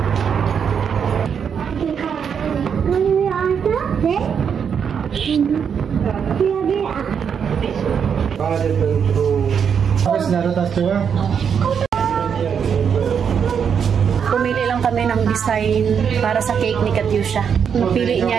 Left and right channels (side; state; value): left; quieter; 7.2 dB